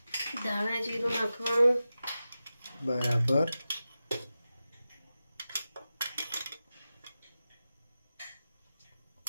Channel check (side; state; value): both; inverted; correlation -0.93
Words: ધાણા જીરું નાખવાનું. બરાબર.